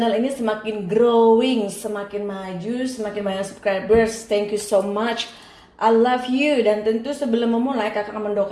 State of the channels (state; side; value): identical; both; correlation 1.00